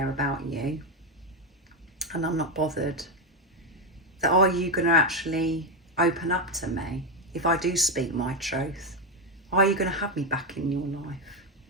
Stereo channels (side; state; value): both; normal; correlation 0.07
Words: about you and I'm not bothered, that are you going to actually open up to me if I do speak my truth? Are you going to have me back in your life?